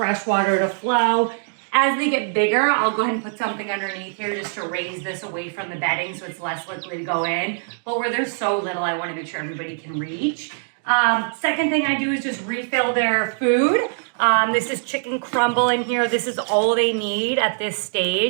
water to flow. As they get bigger, I'll go ahead and put something underneath here just to raise this away from the bedding so it's less likely to go in. But where they're so little, I want to make sure everybody can reach. Second thing I do is just refill their food. This is chicken crumble in here. This is all they need at this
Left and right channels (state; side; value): silent; left; digital silence